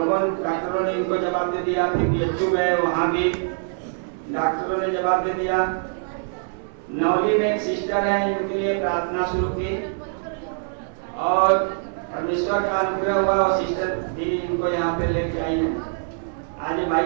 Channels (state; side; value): silent; left; 63 dB below the other